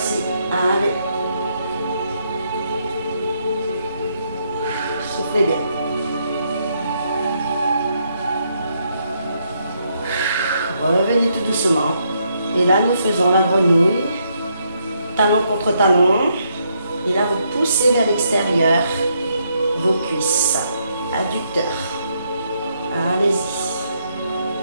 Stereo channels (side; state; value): both; inverted; correlation -0.75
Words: Allez. Soufflez bien. Revenez tout doucement. Et là, nous faisons la grenouille. Talon contre talon. Et là, vous poussez vers l'extérieur vos cuisses. Adducteur. Allez-y.